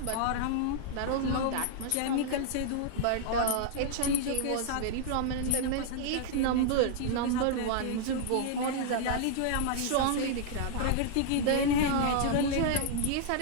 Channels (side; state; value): both; different; correlation -0.01